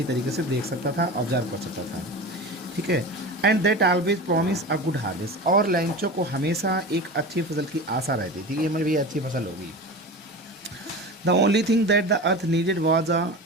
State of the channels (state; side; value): normal; both; correlation 0.30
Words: तरीके से देख सकता था, ऑब्जर्व कर सकता था। ठीक है, and that always promise a good harvest, और लेंचो को हमेशा एक अच्छी फसल की आशा रहती थी कि हमारी भी अच्छी फसल होगी। The only thing that the earth needed was a